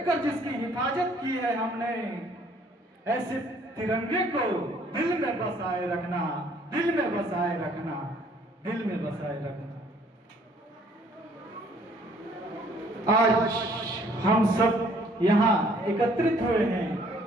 जिसकी हिफाजत की है हमने, ऐसे तिरंगे को दिल में बसाए रखना, दिल में बसाए रखना, दिल में बसाए रखना। आज हम सब यहाँ एकत्रित हुए हैं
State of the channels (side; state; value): both; normal; correlation 0.61